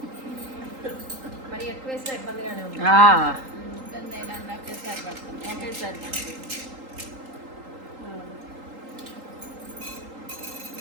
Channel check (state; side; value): late; left; 3.8 ms